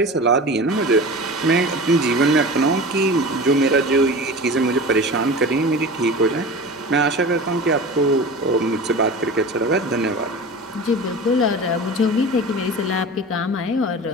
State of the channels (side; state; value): both; normal; correlation 0.34